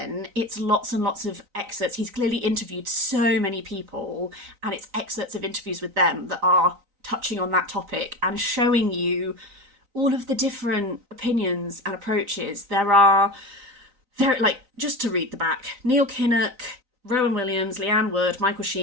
it's lots and lots of excerpts. He's clearly interviewed so many people, and it's excerpts of interviews with them that are touching on that topic and showing you all of the different opinions and approaches. There are, like, just to read the back, Neil Kinnock, Rowan Williams, Leanne Wood, Michael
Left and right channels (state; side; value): late; left; 3.9 ms